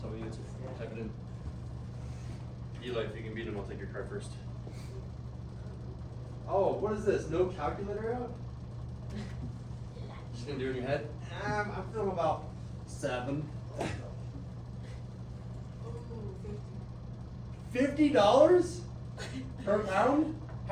me the answer. Type it in. Eli, if you can beat him, I'll take your card first. Oh, what is this? No calculator out? Just gonna do it in your head? I'm feeling about 7. $50 per pound?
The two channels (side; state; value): both; identical; correlation 1.00